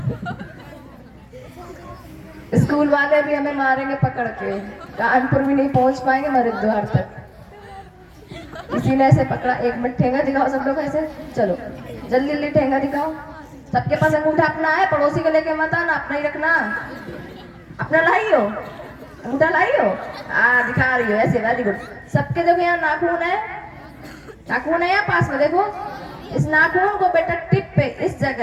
स्कूल वाले भी हमें मारेंगे पकड़ के, कानपुर भी नहीं पहुंच पाएंगे हरिद्वार तक। किसी ने ऐसे पकड़ा, 1 मिनट ठेंगा दिखाओ सब लोग ऐसे, चलो जल्दी जल्दी ठेंगा दिखाओ। सबके पास अंगूठा अपना है, पड़ोसी को लेके मत आना, अपना ही रखना। अपना लाई हो, अंगूठा लाई हो? दिखा रही हो ऐसे, वेरी गुड। सबके देखो यहाँ नाखून है, नाखून है यहाँ पास में देखो। इस नाखून को बेटा टिप पे इस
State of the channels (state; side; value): identical; both; correlation 1.00